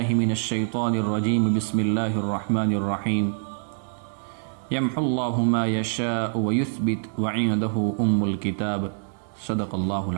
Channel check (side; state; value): left; silent; digital silence